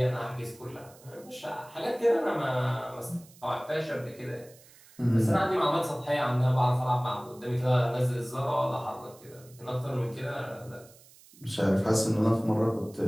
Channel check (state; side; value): noise; right; hiss, 24 dB below the sound